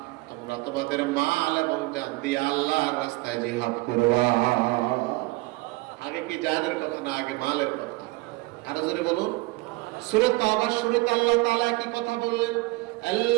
তোমরা তোমাদের মাল এবং জান দিয়ে আল্লাহর রাস্তায় জিহাদ করবা। আগে কি জানের কথা না আগে মালের কথা? আরো জোরে বলুন। সূরা তাওবার শুরুতে আল্লাহ তাআলা কি কথা বললেন?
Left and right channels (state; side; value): quieter; left; 22.6 dB